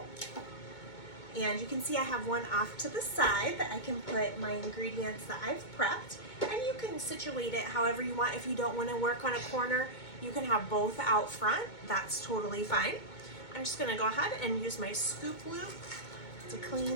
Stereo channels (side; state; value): right; late; 2.2 ms